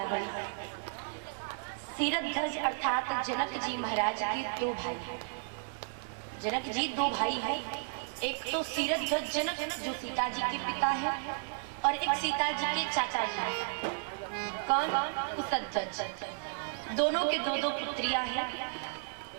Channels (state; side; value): silent; left; digital silence